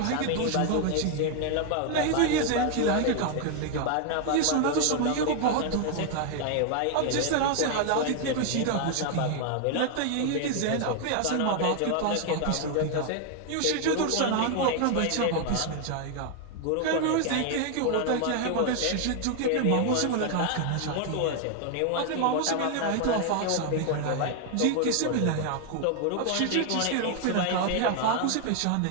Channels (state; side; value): different; both; correlation 0.00